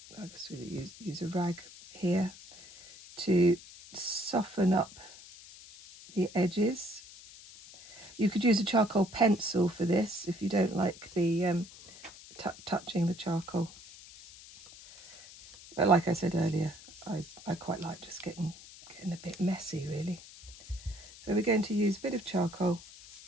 I guess we use a rag here to soften up the edges. You could use a charcoal pencil for this if you don't like the touching the charcoal. But like I said earlier, I quite like just getting a bit messy, really. So we're going to use a bit of charcoal,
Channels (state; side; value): noise; left; hiss, 19 dB below the sound